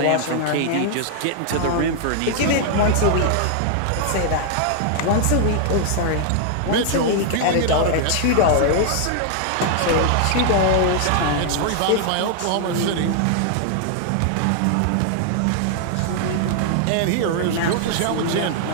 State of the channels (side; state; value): both; different; correlation 0.00